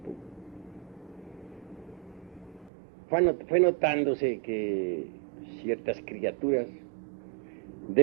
fue notándose que ciertas criaturas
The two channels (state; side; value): drops out; left; at 2.7 s